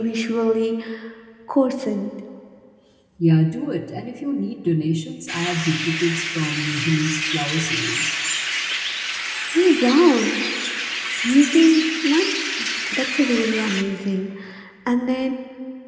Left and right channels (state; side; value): identical; both; correlation 1.00